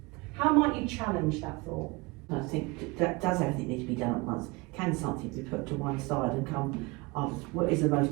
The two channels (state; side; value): quieter; left; 24.9 dB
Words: How might you challenge that thought? I think that does everything need to be done at once? Can something be put to one side and come after? What is the